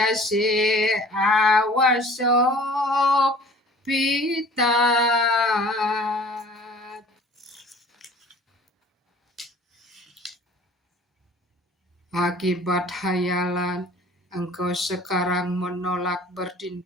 awasok pitat. Akibat hayalan, engkau sekarang menolak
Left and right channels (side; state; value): both; normal; correlation 0.48